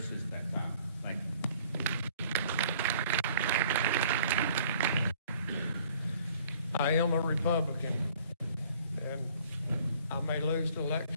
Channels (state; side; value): inverted; both; correlation -0.56